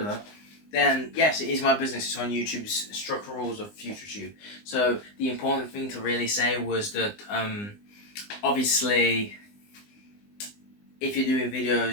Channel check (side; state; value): right; late; 20 ms